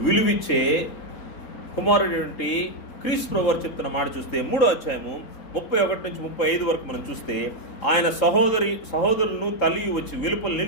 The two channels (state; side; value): late; right; 3.7 ms